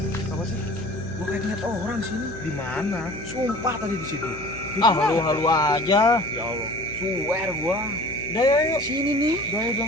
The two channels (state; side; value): noise; left; hum, 14 dB below the sound